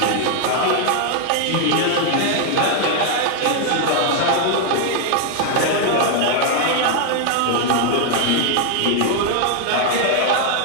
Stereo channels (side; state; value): both; different; correlation 0.00